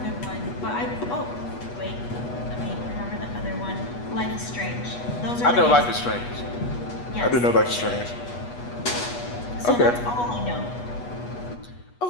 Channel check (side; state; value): right; late; 8.2 ms